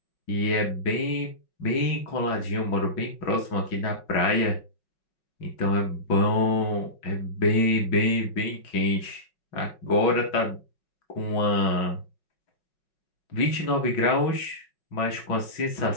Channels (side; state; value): right; late; 5.4 ms